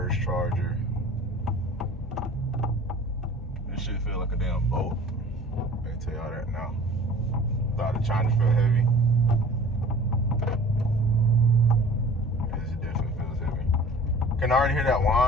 charger. This shit feel like a damn boat. I can tell y'all that now. Thought the Charger felt heavy. This definitely feels heavy. Can already hear that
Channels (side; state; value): both; normal; correlation 0.45